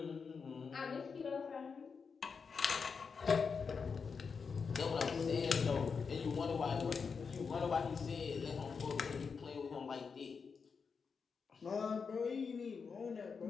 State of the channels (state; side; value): quieter; right; 5.5 dB